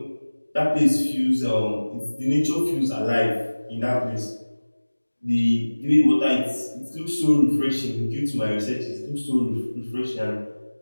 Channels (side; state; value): both; inverted; correlation -1.00